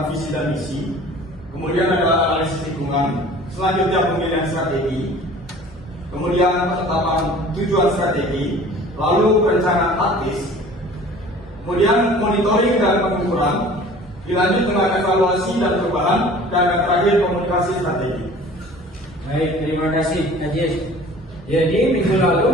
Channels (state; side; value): normal; both; correlation 0.46